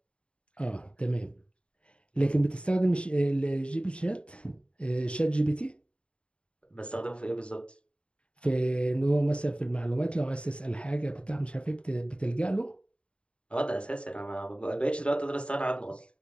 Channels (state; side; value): late; right; 0.056 ms